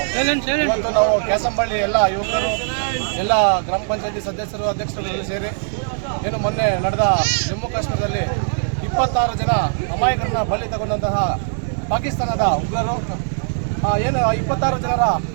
ಇವತ್ತು ನಾವು ಕ್ಯಾಸಂಬಳ್ಳಿ ಎಲ್ಲ ಯುವಕರು ಎಲ್ಲ ಗ್ರಾಮ ಪಂಚಾಯತಿ ಸದಸ್ಯರು ಅಧ್ಯಕ್ಷರುಗಳು ಸೇರಿ ಏನು ಮೊನ್ನೆ ನಡೆದ ಜಮ್ಮು ಕಾಶ್ಮೀರದಲ್ಲಿ 26 ಜನ ಅಮಾಯಕರನ್ನ ಬಲಿ ತಗೊಂಡಂತಹ ಪಾಕಿಸ್ತಾನದ ಉಗ್ರರು ಏನು 26 ಜನರ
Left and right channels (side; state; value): left; silent; digital silence